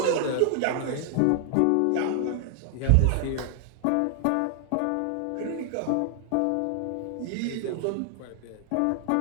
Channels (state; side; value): different; both; correlation 0.00